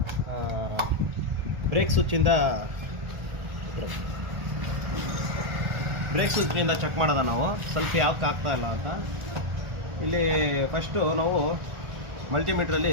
ಬ್ರೇಕ್ ಸ್ವಿಚ್ಚಿಂದ ಚೆಕ್ ಮಾಡೋದ ನಾವು ಸ್ವಲ್ಪ ಯಾಕೆ ಆಗ್ತಾ ಇಲ್ಲ ಅಂತ. ಇಲ್ಲಿ ಫಸ್ಟು ನಾವು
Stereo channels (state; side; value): late; left; 1.4 ms